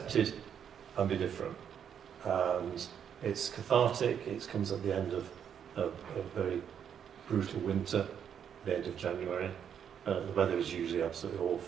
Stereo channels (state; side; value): quieter; left; 8.3 dB